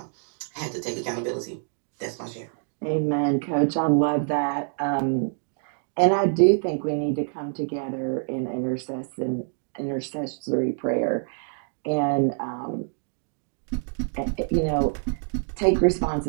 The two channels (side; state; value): left; silent; digital silence